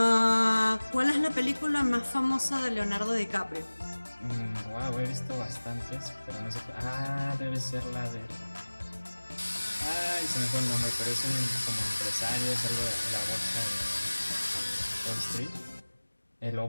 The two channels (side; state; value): both; inverted; correlation -1.00